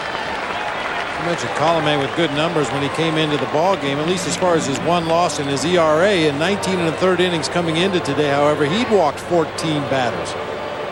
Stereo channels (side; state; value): both; identical; correlation 1.00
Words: You mentioned Colome with good numbers when he came into the ball game, at least as far as his 1 loss and his ERA. In 19 1/3 innings coming into today, however, he'd walked 14 batters.